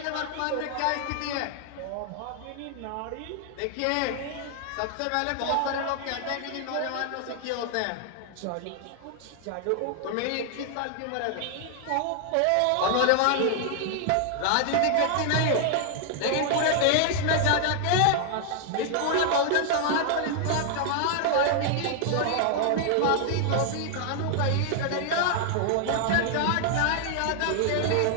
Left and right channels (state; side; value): different; both; correlation 0.00